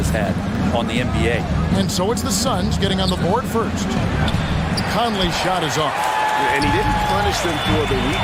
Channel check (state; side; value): identical; both; correlation 1.00